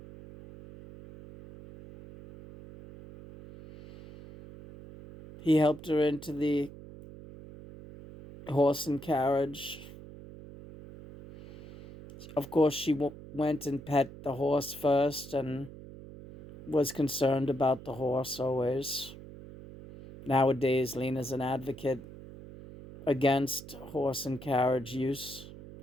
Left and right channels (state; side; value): noise; right; hum, 16 dB below the sound